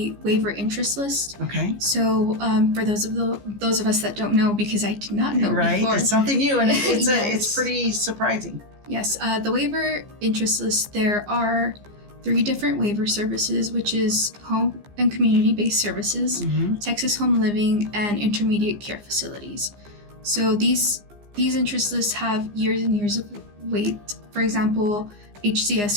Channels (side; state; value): left; late; 15 ms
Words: waiver interest list. Okay. So for those of us that don't know, because I did not know before. It's something new, and it's Yes. it's pretty surprising. Yes, the waiver interest list, there are 3 different waiver services, which is home and community-based services, Texas Home Living, and intermediate care facilities. So these interest lists have years and years of wait. For example,